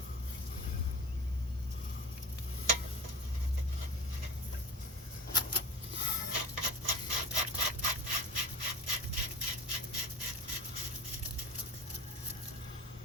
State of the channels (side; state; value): both; normal; correlation 0.34